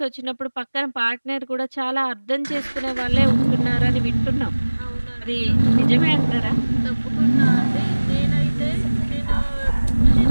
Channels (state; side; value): inverted; both; correlation -1.00